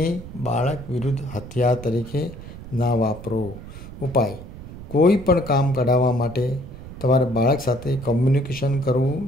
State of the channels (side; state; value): right; noise; rumble, 13 dB below the sound